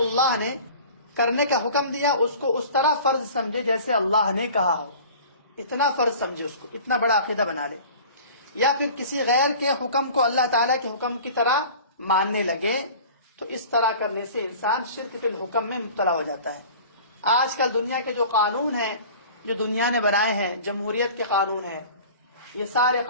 نے کرنے کا حکم دیا، اس کو اس طرح فرض سمجھے جیسے اللہ نے کہا ہو، اتنا فرض سمجھے، اس کو اتنا بڑا عقیدہ بنا لے، یا پھر کسی غیر کے حکم کو اللہ تعالیٰ کے حکم کی طرح ماننے لگے، تو اس طرح کرنے سے انسان شرک فی الحکم میں مبتلا ہو جاتا ہے۔ آج کل دنیا کے جو قانون ہیں، جو دنیا نے بنائے ہیں، جمہوریت کے قانون ہیں، یہ سارے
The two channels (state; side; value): inverted; both; correlation -0.42